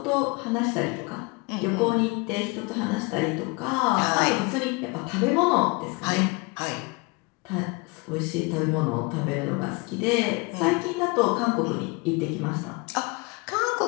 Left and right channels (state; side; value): quieter; right; 27.3 dB